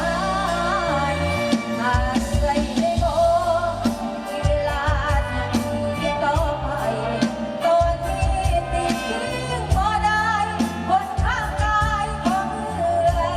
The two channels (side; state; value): both; identical; correlation 1.00